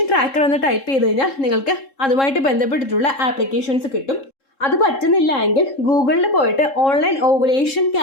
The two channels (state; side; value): late; right; 3.7 ms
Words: ട്രാക്കർ എന്ന് ടൈപ്പ് ചെയ്ത് കഴിഞ്ഞാൽ നിങ്ങൾക്ക് അതുമായിട്ട് ബന്ധപ്പെട്ടിട്ടുള്ള ആപ്ലിക്കേഷൻസ് കിട്ടും. അത് പറ്റുന്നില്ല എങ്കിൽ ഗൂഗിളിൽ പോയിട്ട് ഓൺലൈൻ ഓവുലേഷൻ